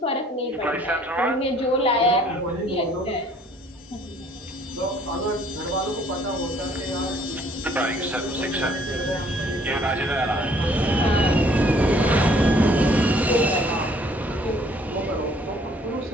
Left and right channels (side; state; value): both; normal; correlation 0.60